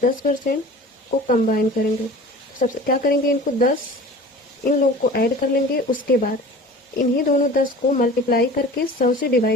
को कंबाइन करेंगे। सबसे क्या करेंगे, इनको 10 इन लोगों को ऐड कर लेंगे, उसके बाद इन्हीं दोनों 10 को मल्टीप्लाई करके 100 से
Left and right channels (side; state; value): both; normal; correlation 0.40